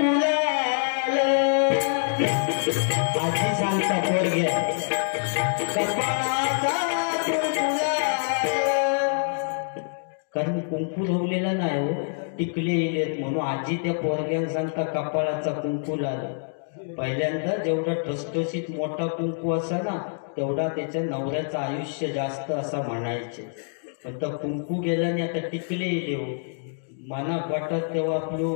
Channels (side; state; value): right; silent; digital silence